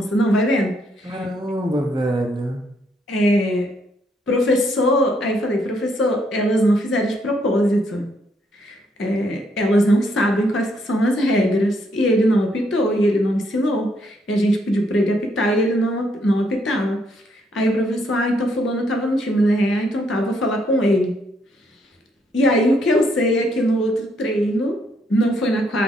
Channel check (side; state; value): both; normal; correlation 0.73